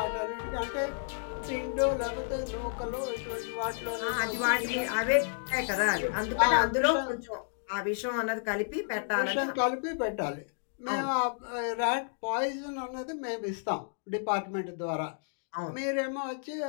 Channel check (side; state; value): right; silent; digital silence